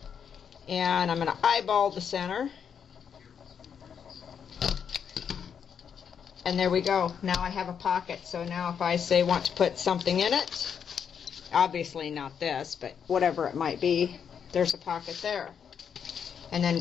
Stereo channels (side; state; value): right; quieter; 7.5 dB